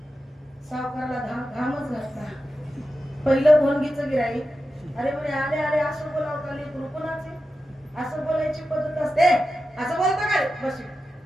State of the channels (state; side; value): normal; both; correlation 0.91